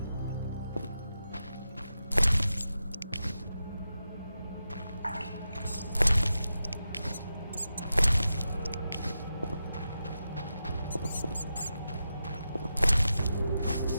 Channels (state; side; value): inverted; both; correlation -0.89